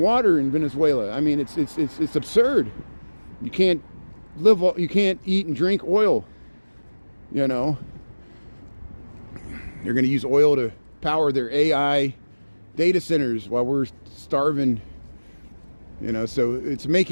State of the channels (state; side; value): inverted; both; correlation -1.00